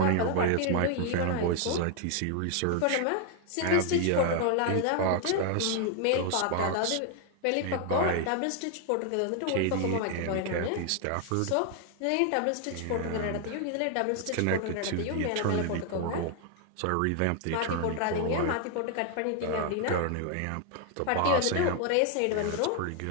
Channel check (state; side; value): different; both; correlation 0.00